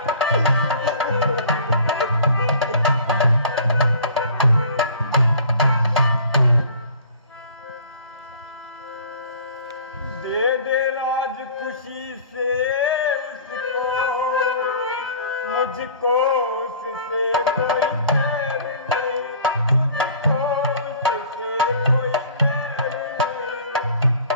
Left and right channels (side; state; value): both; inverted; correlation -0.47